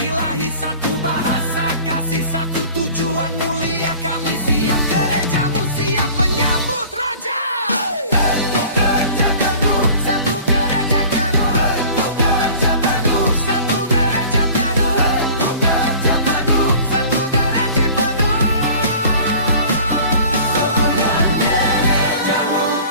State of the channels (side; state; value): both; inverted; correlation -0.45